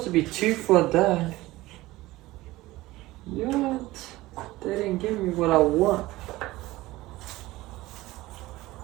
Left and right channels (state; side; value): quieter; left; 18.4 dB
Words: to be 2 for that. Yet they didn't give me what I want.